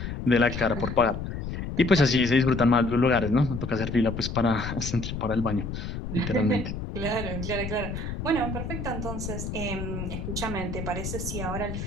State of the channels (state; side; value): noise; left; rumble, 6 dB below the sound